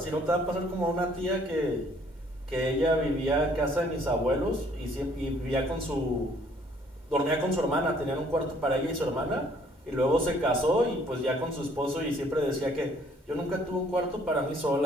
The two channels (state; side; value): normal; both; correlation 0.61